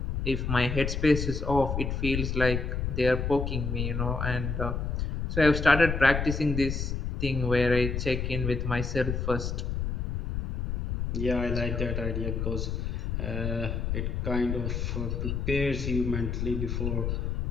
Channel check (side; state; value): left; noise; rumble, 2 dB below the sound